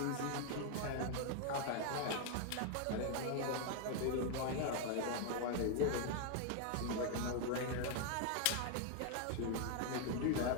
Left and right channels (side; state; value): both; different; correlation 0.00